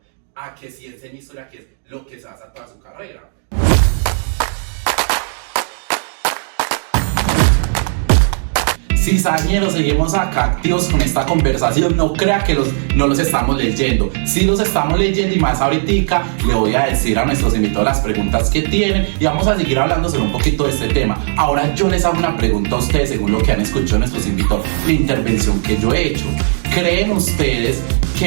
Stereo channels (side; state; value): left; silent; digital silence